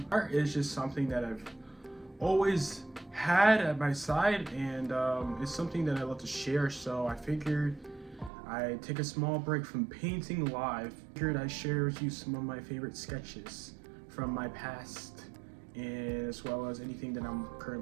Art is just something that I've always had at my side, and it's something that I love to share, so I figured I'd take a small break from painting live. Figured I'd share with you some of my favorite sketches from my past, and as well as anything that I'm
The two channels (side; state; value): left; drops out; at 8.3 s